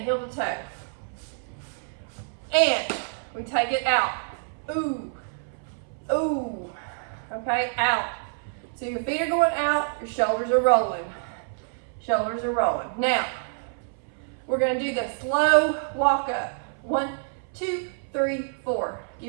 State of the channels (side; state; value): left; silent; 60 dB below the other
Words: to toe. And we take it out. Ooh, ooh, okay, out. So your feet are going out, your shoulders are rolling. Shoulders are rolling. Now, we're gonna do the slow walk up. 1, 2, 3, 4.